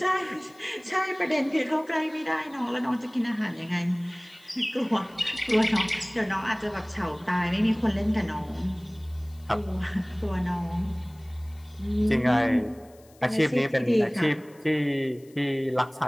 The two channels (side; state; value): left; noise; hiss, 29 dB below the sound